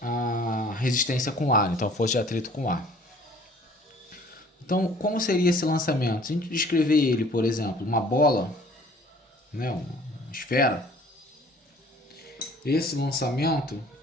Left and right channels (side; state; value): both; normal; correlation 0.53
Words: resistência com ar, então força de atrito com ar. Então, como seria esse lançamento? Se a gente descrever ele, por exemplo, uma bola, né, uma esfera, esse lançamento